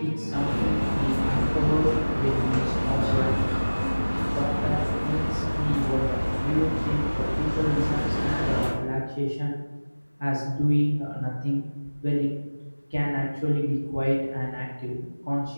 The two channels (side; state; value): both; inverted; correlation -1.00